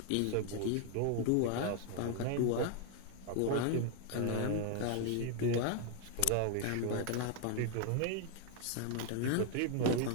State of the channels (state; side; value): different; both; correlation 0.00